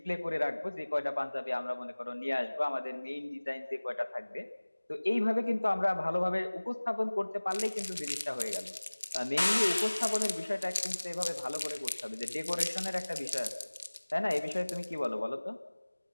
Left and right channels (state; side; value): inverted; both; correlation -1.00